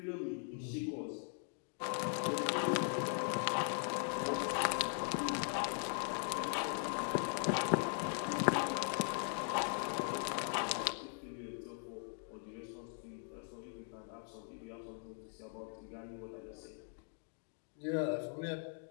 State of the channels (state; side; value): silent; right; 51 dB below the other